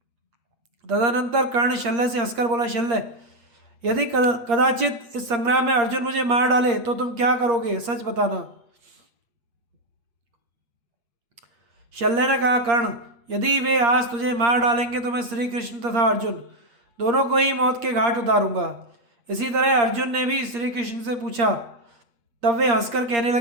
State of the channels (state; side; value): late; left; 8.5 ms